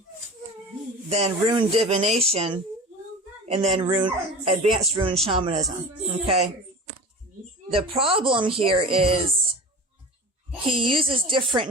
then rune divination, and then advanced rune shamanism, okay? The problem here is he uses different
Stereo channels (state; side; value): normal; both; correlation 0.34